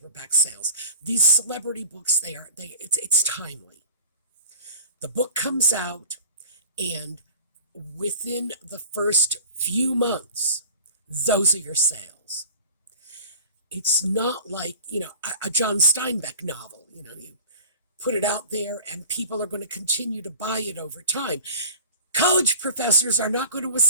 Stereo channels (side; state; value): both; inverted; correlation -0.41